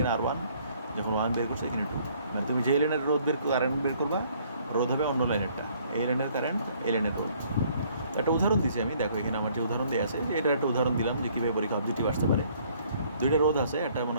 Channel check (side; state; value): both; inverted; correlation -0.61